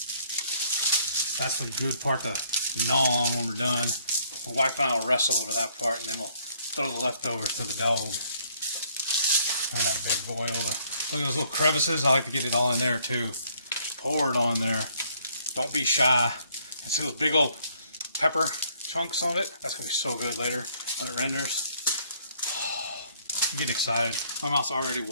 That's the good part to gnaw on when we're done. My wife and I will wrestle over that part, and then we'll throw the leftovers to the dog. And that big boy over. Look at those little crevices. I like to get it all in there too. Pour it on there. Don't be shy. And see those big old pepper chunks on it? That's going to be so good later when it renders. Oh, I'm getting excited. My mouth's already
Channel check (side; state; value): both; inverted; correlation -0.65